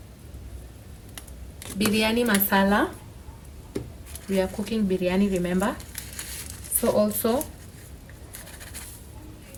Biryani masala. We are cooking biryani, remember. So also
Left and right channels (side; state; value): both; identical; correlation 1.00